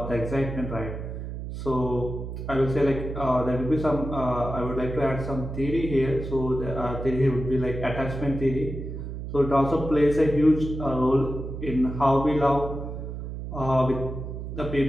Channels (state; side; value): noise; right; hum, 7 dB below the sound